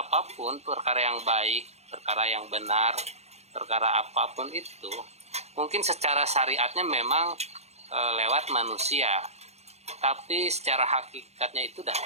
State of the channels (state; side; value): late; left; 0.31 ms